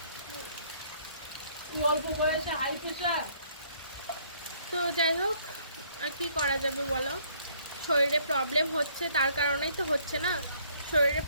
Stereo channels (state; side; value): inverted; both; correlation -0.63